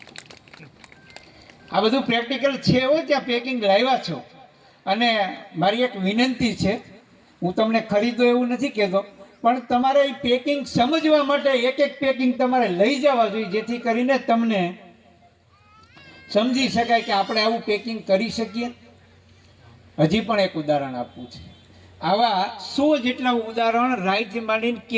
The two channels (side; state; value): both; identical; correlation 1.00